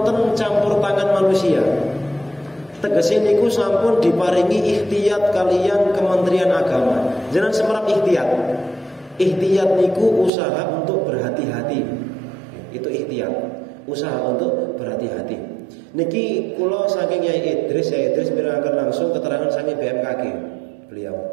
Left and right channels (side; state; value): left; drops out; at 10.3 s